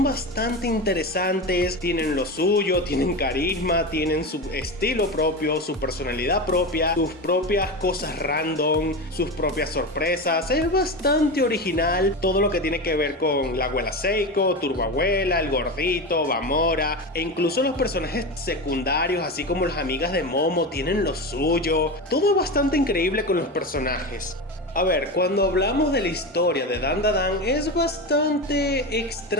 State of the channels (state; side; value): normal; both; correlation 0.22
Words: bastante interesantes. Tienen lo suyo, tienen carisma, tienen su estilo propio, su personalidad propia, sus propias cosas random, sus propias sorpresas. Es bastante original todo lo que tiene que ver con la abuela Seiko, Turbo Abuela, el gordito, Bamora, e incluso los personajes secundarios, así como las amigas de Momo, tienen lo suyo. Todo es bastante increíble con los personajes. A ver, cuando hablamos de la historia de Dandadan es bastante